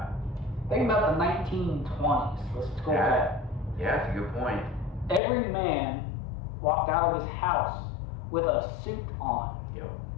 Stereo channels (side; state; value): right; drops out; at 5.2 s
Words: Think about the 1920s. Let's go back. Yeah, that's a good point. Every man walked out of his house with a suit on. Yep.